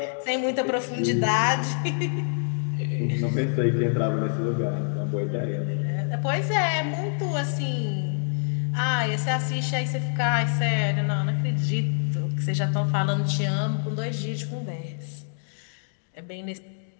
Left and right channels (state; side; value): silent; right; digital silence